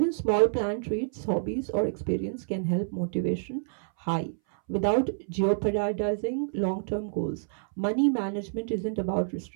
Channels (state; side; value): silent; left; 59 dB below the other